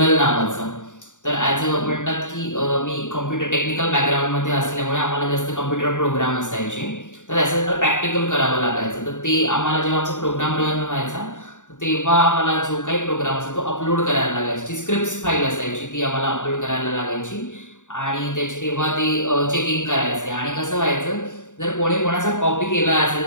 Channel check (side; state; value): right; late; 0.86 ms